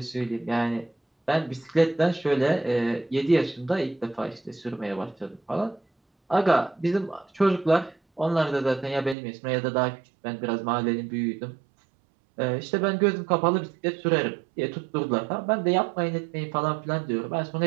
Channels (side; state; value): left; drops out; at 9.2 s